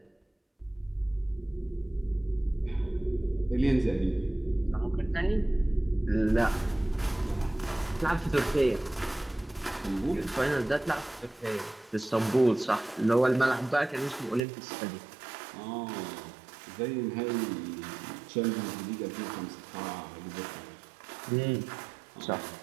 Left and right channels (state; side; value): drops out; left; at 14.5 s